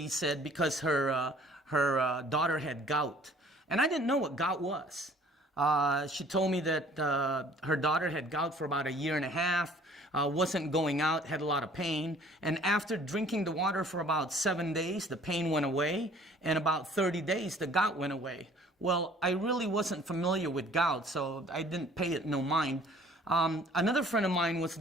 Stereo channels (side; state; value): both; normal; correlation 0.54